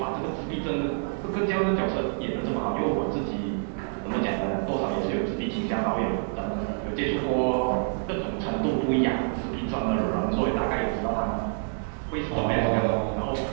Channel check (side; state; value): left; silent; digital silence